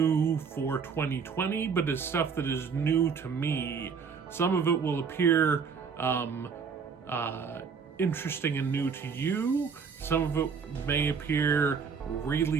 for 2020, but is stuff that is new to me. Some of it will appear interesting and new to you. Some of it may appear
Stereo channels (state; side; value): quieter; left; 5.9 dB